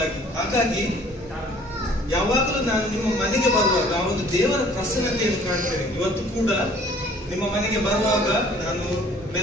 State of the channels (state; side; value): normal; both; correlation 0.54